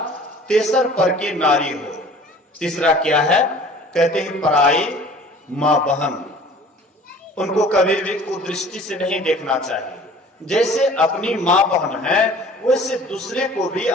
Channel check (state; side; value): normal; both; correlation 0.47